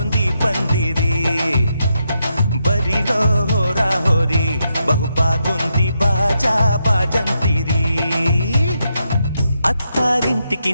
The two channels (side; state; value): both; inverted; correlation -0.82